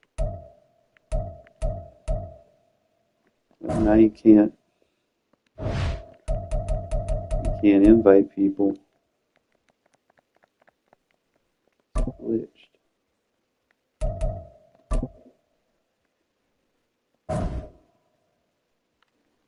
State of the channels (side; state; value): both; identical; correlation 1.00